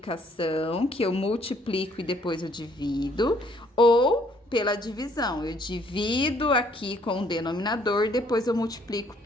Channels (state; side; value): normal; both; correlation 0.64